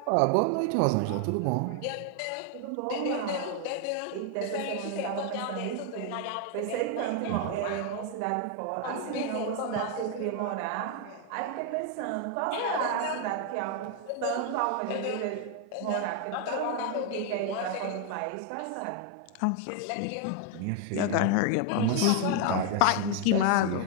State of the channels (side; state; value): both; different; correlation 0.01